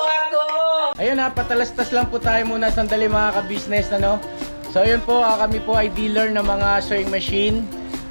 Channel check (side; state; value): both; inverted; correlation -1.00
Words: Ayun ha, patalastas lang po tayo muna sandali mga ka-business, ano? So ayun po, kami po ay dealer ng mga sewing machine.